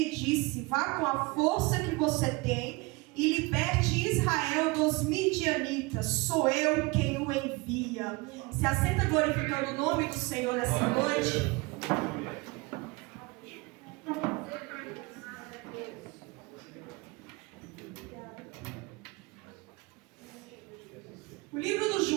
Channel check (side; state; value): left; quieter; 24.8 dB